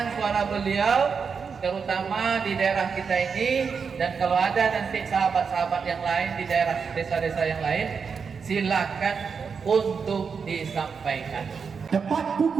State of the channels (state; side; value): quieter; left; 5.8 dB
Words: suara beliau, terutama di daerah kita ini, dan kalau ada nanti sahabat-sahabat yang lain di daerah desa-desa yang lain, silakan untuk disampaikan. Tepat